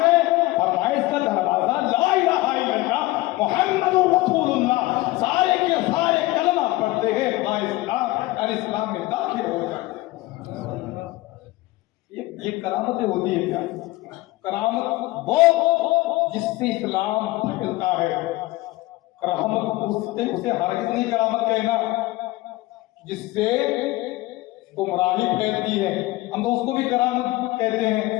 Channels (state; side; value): quieter; right; 19.1 dB